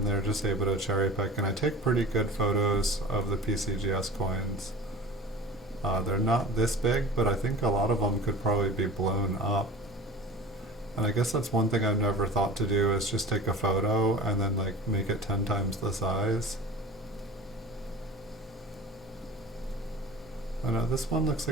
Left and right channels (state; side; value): normal; both; correlation 0.40